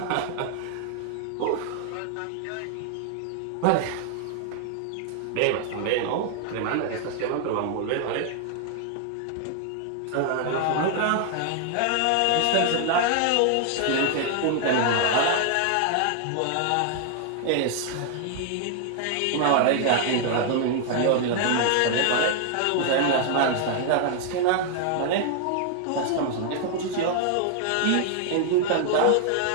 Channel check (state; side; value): different; both; correlation 0.00